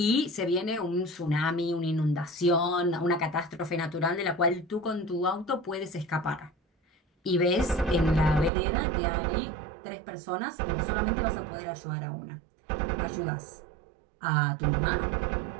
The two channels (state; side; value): drops out; left; at 8.5 s